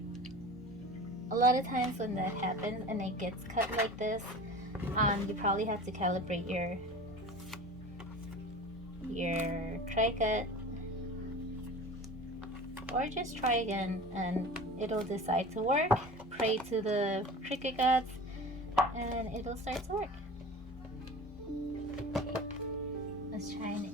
and it gets cut like this, you probably have to calibrate your cricut, or just try again and it'll decide to work. Pray to the Cricut gods and it'll start to work. Let's try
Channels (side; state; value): both; normal; correlation 0.37